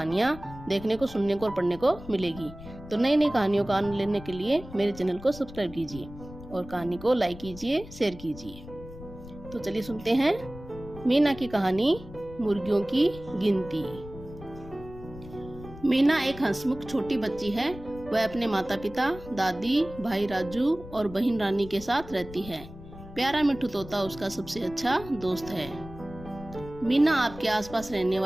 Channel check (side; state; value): left; noise; rumble, 15 dB below the sound